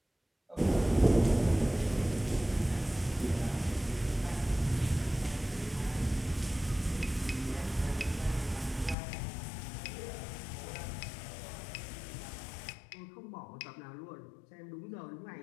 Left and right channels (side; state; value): right; drops out; at 9.0 s